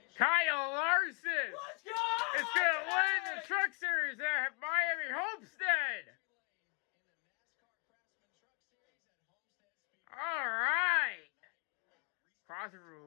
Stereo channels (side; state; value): right; quieter; 35.8 dB